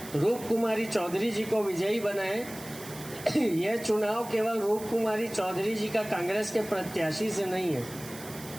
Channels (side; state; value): right; noise; hiss, 15 dB below the sound